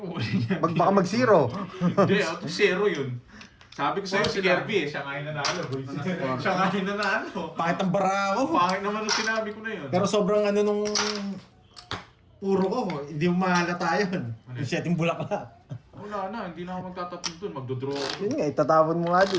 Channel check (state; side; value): identical; both; correlation 1.00